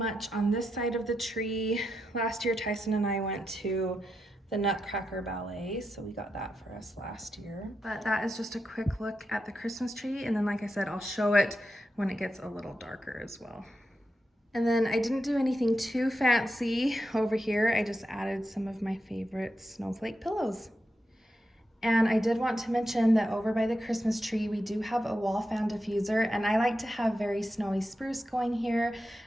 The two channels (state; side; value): normal; both; correlation 0.86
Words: on this side of the tree. Last year, Tyson and I went to the Nutcracker Ballet, so we got that for us last year. But that is just a quick look at the Christmas tree, and then like I said, I'll show it when it gets a little darker as well. And then I didn't do anything too fancy over here. I just added some of my favorite snowflake pillows. And I did want to mention that over by the Christmas tree, we do have a wall fan diffuser, and I like to have very snowy spruce going here,